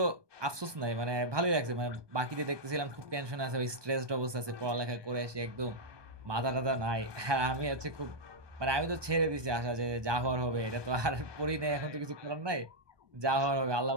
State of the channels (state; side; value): late; left; 1.2 ms